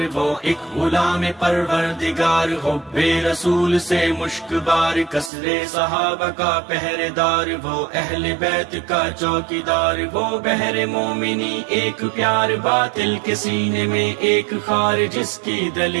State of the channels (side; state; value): left; drops out; at 5.3 s